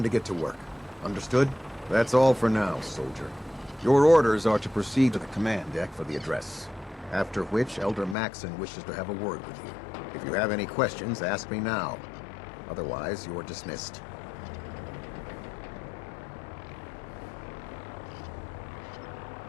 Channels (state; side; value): drops out; right; at 8.2 s